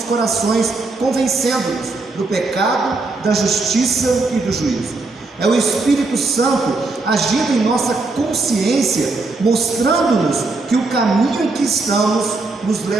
corações, convencendo-nos do pecado, da justiça e do juízo. É o Espírito Santo agindo em nossa consciência, mostrando-nos que o caminho em que estamos nos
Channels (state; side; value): quieter; left; 3.5 dB